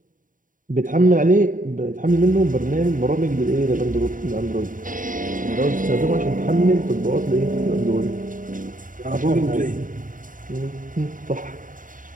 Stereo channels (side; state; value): left; late; 0.39 ms